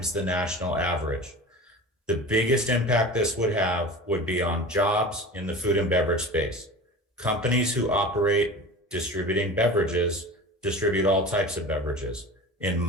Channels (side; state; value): both; normal; correlation 0.34